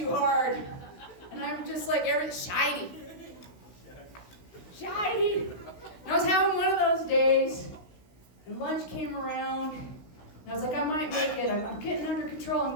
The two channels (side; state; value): right; late; 16 ms